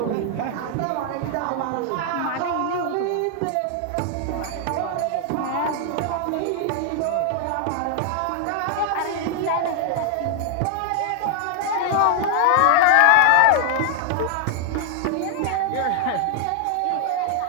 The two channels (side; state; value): both; different; correlation 0.00